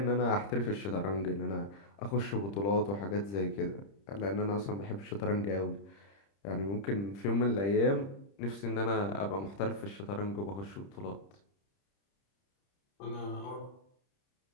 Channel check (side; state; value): right; late; 30 ms